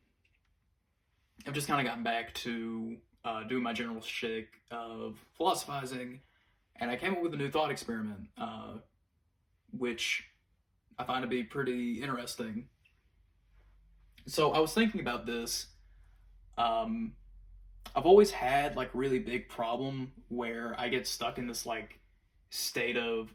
just kind of gotten back to doing my general shtick of philosophizing, and I came up with a new thought experiment, which I find to be pretty interesting. So I was thinking about this. Um, I've always had like really big problem where I get stuck in this like state of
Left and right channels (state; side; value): identical; both; correlation 1.00